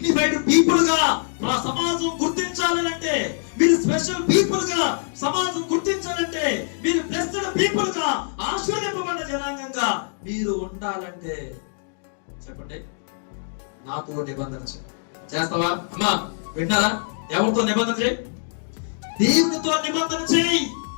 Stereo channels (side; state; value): right; silent; digital silence